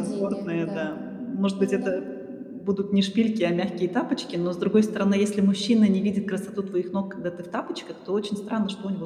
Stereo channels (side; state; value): both; identical; correlation 1.00